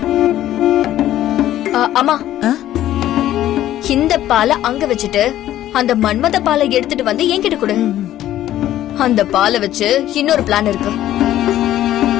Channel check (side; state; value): right; quieter; 13.0 dB